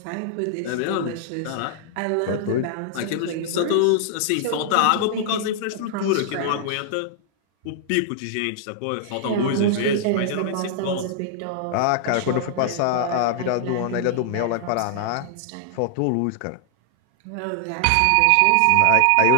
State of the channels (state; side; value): different; both; correlation -0.01